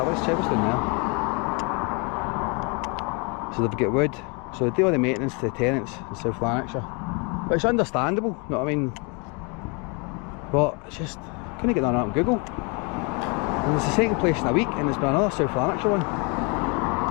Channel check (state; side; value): quieter; right; 32.2 dB